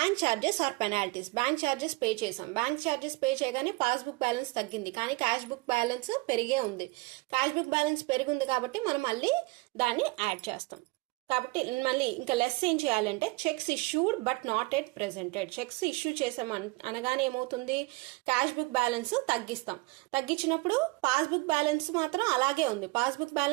charges or penalties. Bank charges pay చేసాం. బ్యాంక్ ఛార్జెస్ పే చేయగానే పాస్బుక్ బ్యాలెన్స్ తగ్గింది కానీ క్యాష్ బుక్ బ్యాలెన్స్ పెరిగే ఉంది. క్యాష్ బుక్ బ్యాలెన్స్ పెరిగింది కాబట్టి మనం మళ్ళీ దాన్ని యాడ్ చేస్తాం. కాబట్టి మళ్ళీ ఇంకా లెస్ ఏం చేయాలంటే checks issued but not at presented. Checks issue చేసాం అనగానే ఏమవుతుంది, క్యాష్ బుక్ బ్యాలెన్స్ తగ్గిస్తాం. తగ్గించినప్పుడు పాస్బుక్ బ్యాలెన్స్ మాత్రం అలాగే ఉంది. పాస్బుక్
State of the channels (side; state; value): left; quieter; 23.6 dB